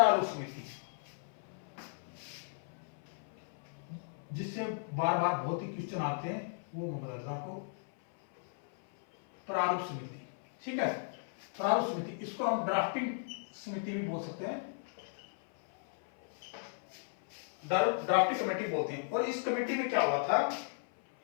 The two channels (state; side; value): silent; right; 54 dB below the other